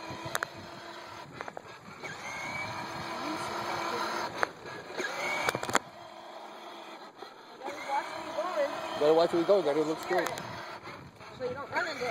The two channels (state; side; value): identical; both; correlation 1.00